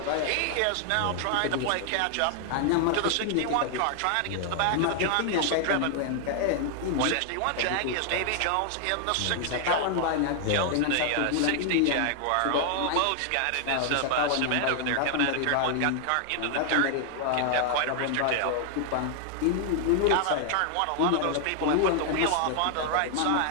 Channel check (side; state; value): both; different; correlation 0.00